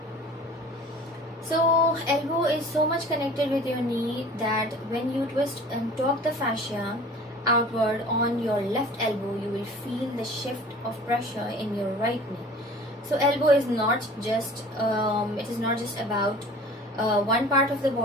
So elbow is so much connected with your knee that when you twist and torque the fascia outward on your left elbow, you will feel the shift of pressure in your right knee. So elbow is not just about one part of the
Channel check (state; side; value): normal; both; correlation 0.45